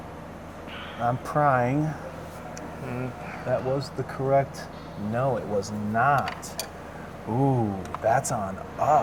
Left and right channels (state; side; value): identical; both; correlation 1.00